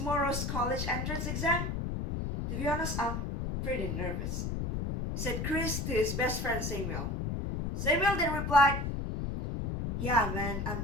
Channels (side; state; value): left; noise; rumble, 2 dB below the sound